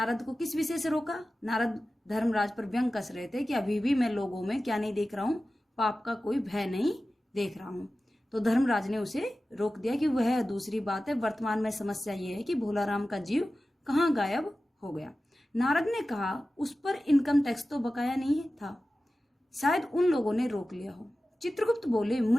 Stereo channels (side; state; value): both; normal; correlation 0.95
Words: को किस विषय से रोका? नारद धर्मराज पर व्यंग कस रहे थे कि अभी भी मैं लोगों में क्या नहीं देख रहा हूं? पाप का कोई भय नहीं देख रहा हूं। तो धर्मराज ने उसे रोक दिया कि वह दूसरी बात है, वर्तमान में समस्या यह है कि भोलाराम का जीव कहाँ गायब हो गया। नारद ने कहा उस पर इनकम टैक्स तो बकाया नहीं था, शायद उन लोगों ने रोक लिया हो। चित्रगुप्त बोले